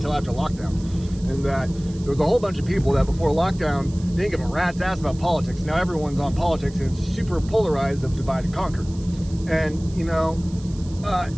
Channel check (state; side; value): noise; right; hiss, 22 dB below the sound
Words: after lockdown. And that there was a whole bunch of people that before lockdown didn't give a rat's ass about politics. Now everyone's on politics, and it's super polarized of divide and conquer. And